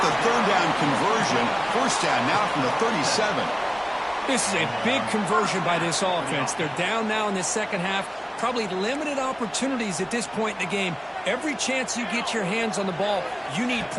the 3rd down conversion. First down now from the 37. This is a big conversion by this offense. They're down now in the second half. Probably limited opportunities at this point in the game. Every chance you get your hands on the ball, you need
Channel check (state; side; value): identical; both; correlation 1.00